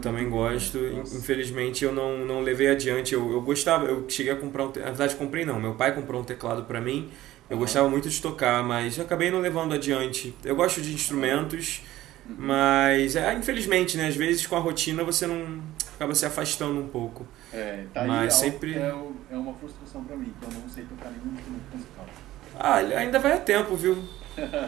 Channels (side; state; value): left; quieter; 15.2 dB